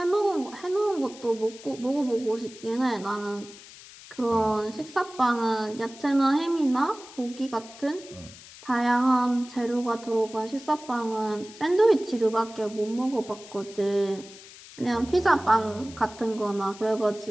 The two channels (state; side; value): noise; left; hiss, 18 dB below the sound